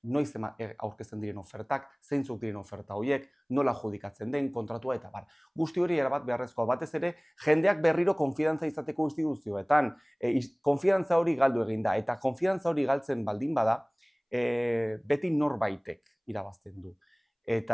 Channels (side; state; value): both; identical; correlation 1.00